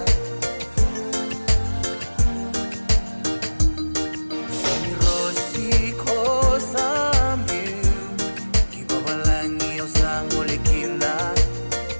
Sami rosi kosami kibabalangi osango lekina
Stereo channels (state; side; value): inverted; both; correlation -1.00